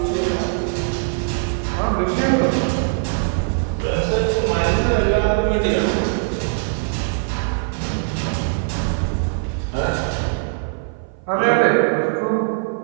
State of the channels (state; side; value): silent; left; 56 dB below the other